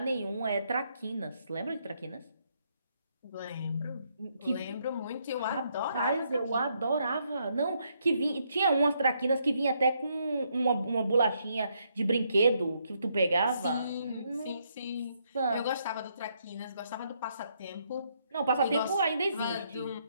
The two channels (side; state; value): both; inverted; correlation -0.74